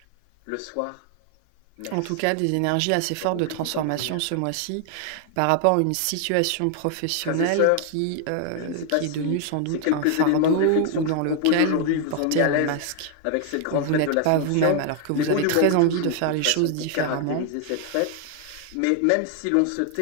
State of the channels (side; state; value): both; different; correlation 0.00